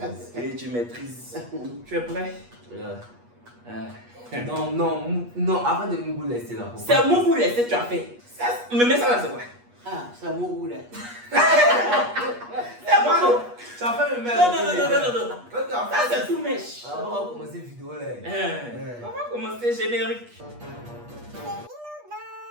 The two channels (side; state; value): left; late; 8.3 ms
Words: Et tu maîtrises. Tu es prêt? Non, avant de me laisser là. C'est mon goût laisser, tu as fait. Mais ça là, c'est quoi? Ah, c'est mon goût là. C'est bon. Tu as fait le même. Non. Ça c'est tout mèche. On va commencer la vidéo là. On va commencer générique.